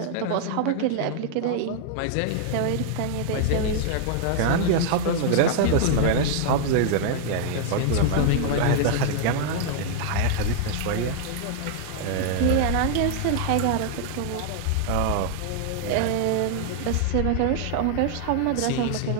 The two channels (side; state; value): both; different; correlation -0.01